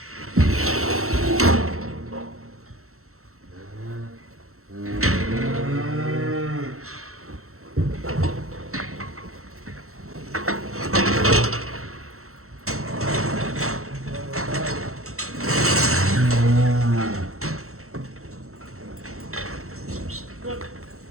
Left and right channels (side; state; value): left; late; 0.63 ms